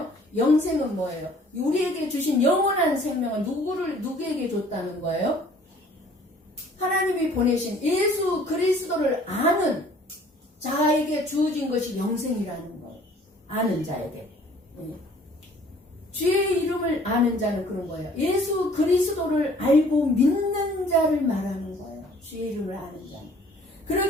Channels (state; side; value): normal; both; correlation 0.55